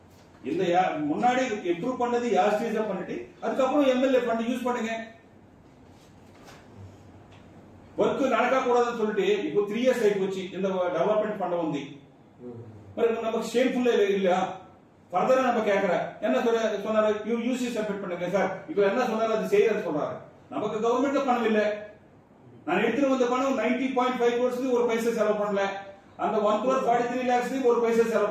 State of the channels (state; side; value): identical; both; correlation 1.00